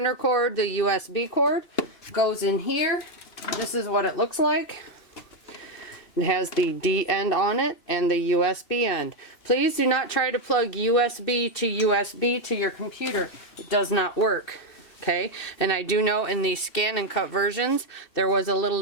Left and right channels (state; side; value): late; right; 2.7 ms